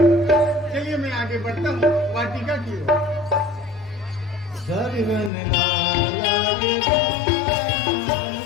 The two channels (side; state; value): right; drops out; at 5.3 s